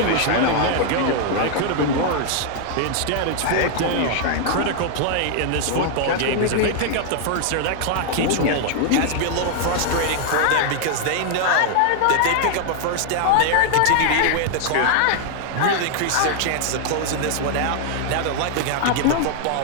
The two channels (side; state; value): both; different; correlation 0.00